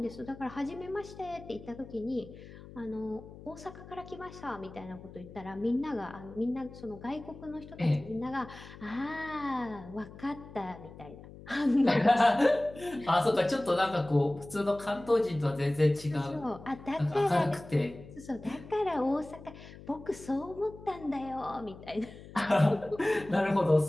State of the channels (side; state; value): left; noise; hum, 17 dB below the sound